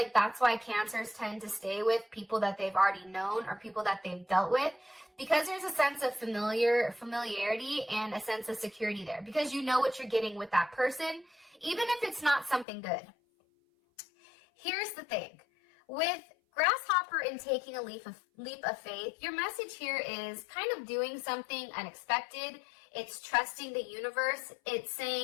that's why Cancers tend to stay with people that they've already known or people that they've dealt with, because there's a sense of familiarity and a sense of security there, because you know what you're getting with that person, even if it's not something good. Here's the thing. With grasshopper and taking a leap of faith, your message here is kind of doing something unexpected. It's trusting the universe. It's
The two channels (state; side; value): drops out; right; at 12.7 s